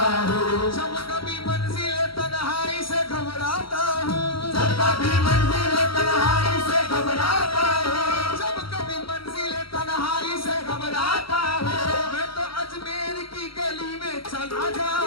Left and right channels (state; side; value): late; right; 0.74 ms